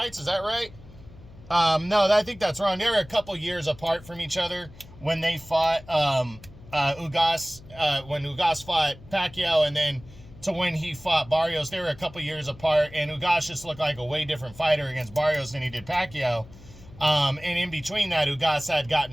Is that right? No, I think that's wrong. They were a couple years apart from each other when they fought Ugas, when Ugas fought Pacquiao, and then to when he fought Barrios. They were a couple years apart, and Ugas just looked like a way different fighter against Barrios than he did Pacquiao. And in between that, Ugas had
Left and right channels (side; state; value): left; noise; hum, 20 dB below the sound